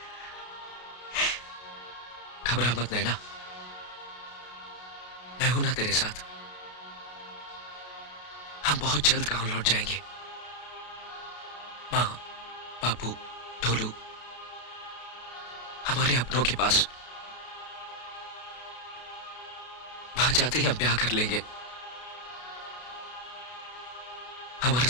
घबरा मत नैना, मैं हूं ना तेरे साथ। हम बहुत जल्द गांव लौट जाएंगे। माँ, बापू, ढोलू, हमारे अपनों के पास। वहां जाते ही हम ब्याह कर लेंगे। हमारा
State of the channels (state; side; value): late; right; 33 ms